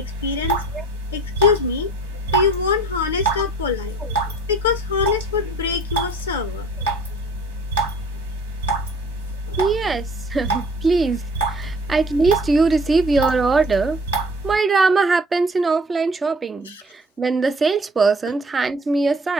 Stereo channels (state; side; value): normal; both; correlation 0.50